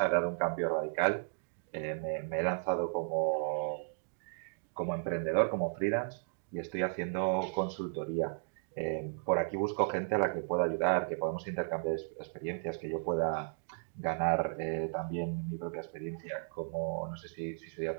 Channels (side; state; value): left; silent; digital silence